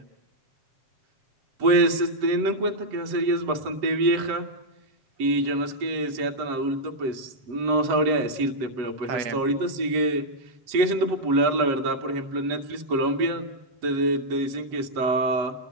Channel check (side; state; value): left; late; 7.5 ms